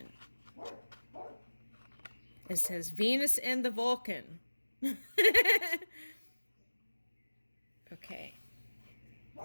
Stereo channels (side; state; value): both; inverted; correlation -1.00